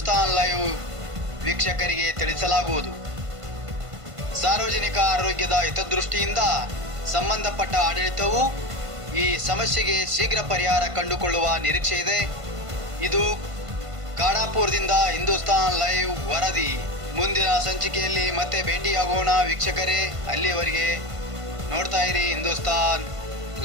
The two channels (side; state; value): left; late; 1.5 ms